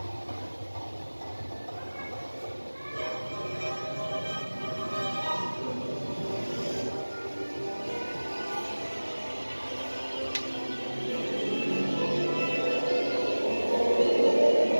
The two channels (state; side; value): inverted; both; correlation -1.00